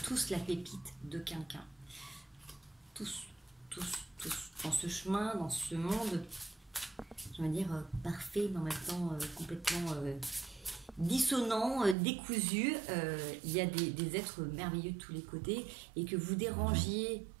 tous la pépite de quelqu'un. Tous. Dans ce chemin, dans ce monde, je vais dire parfait, mais en même temps complètement dissonant, décousu. Il y a des êtres merveilleux de tous les côtés et que vous dérangiez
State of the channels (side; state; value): left; drops out; at 12.0 s